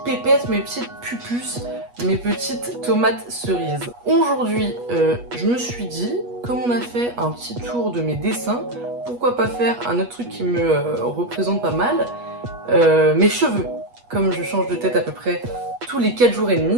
pépettes, mes petites pupus, mes petites tomates cerises? Aujourd'hui, je me suis dit, comme on a fait un petit tour de mes dessins, pourquoi pas faire un autre truc qui me représente pas mal, mes cheveux. Comme je change de tête à peu près tous les 4 jours et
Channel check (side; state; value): left; late; 8.3 ms